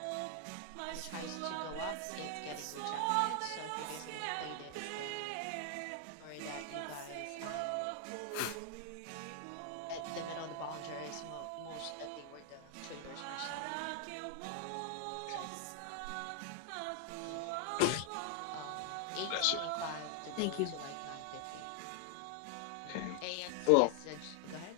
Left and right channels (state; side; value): different; both; correlation 0.00